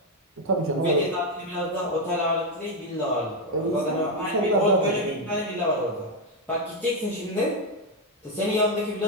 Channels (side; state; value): both; normal; correlation 0.04